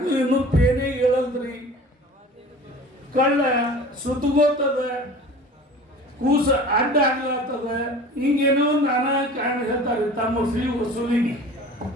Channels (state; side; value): normal; both; correlation 0.41